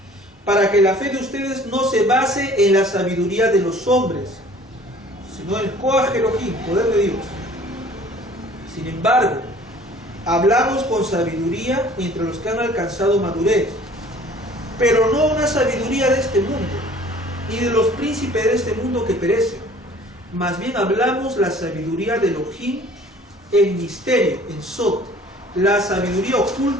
para que la fe de ustedes no se base en la sabiduría de los hombres, sino en el koach Elohim, poder de Dios. Sin embargo, hablamos con sabiduría entre los que han alcanzado madurez, pero no una sabiduría de este mundo, ni de los príncipes de este mundo que perecen. Más bien hablamos la sabiduría de Elohim en misterio, en Sot, la sabiduría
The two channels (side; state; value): both; normal; correlation 0.51